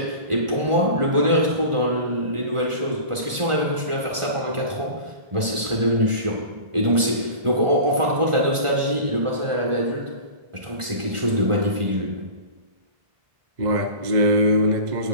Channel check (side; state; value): left; late; 1.4 ms